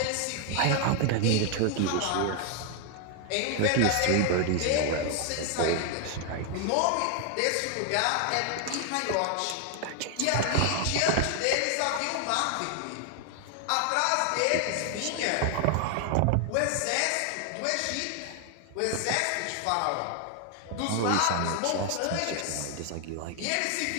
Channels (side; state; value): both; different; correlation 0.00